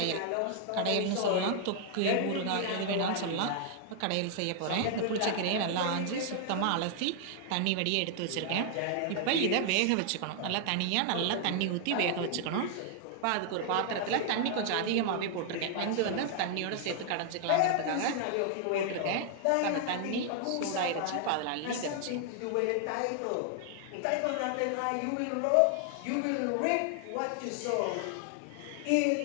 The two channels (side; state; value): both; different; correlation 0.00